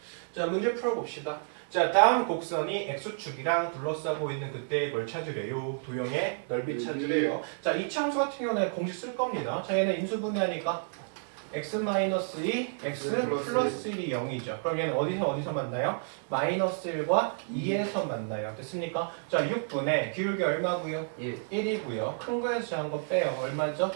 자, 문제 풀어봅시다. 자, 다음 곡선이 x축이랑 둘러싸고 있는 그때의 뭘 찾으래요? 도형의 넓이 찾으래요. 자, 이 함수 같은 경우는 공식 쓸 겁니다. 자, 얘는 인수분해하니까 x-2, x 플러스 1이 0이죠. 그럼 얘는 어디서 만나요? 마이너스 1과 2에서 만나요. 됐습니까? 자, 6분의 기울기 얼마고요? 1이고요. 큰 거에서 작은 거 빼요. 얼마죠?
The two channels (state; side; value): silent; left; digital silence